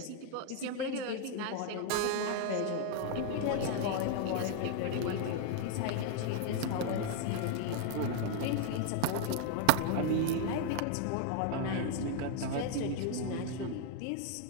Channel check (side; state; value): both; different; correlation 0.00